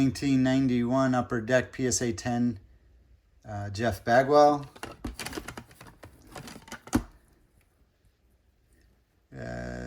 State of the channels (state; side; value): identical; both; correlation 1.00